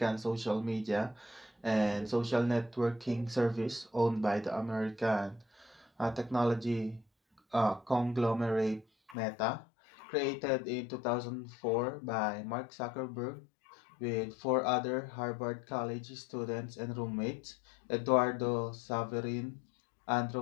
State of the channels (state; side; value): drops out; right; at 9.2 s